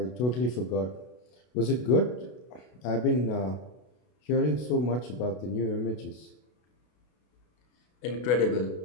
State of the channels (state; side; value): late; right; 32 ms